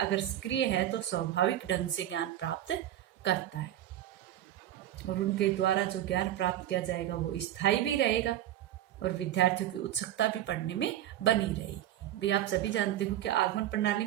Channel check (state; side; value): quieter; left; 12.5 dB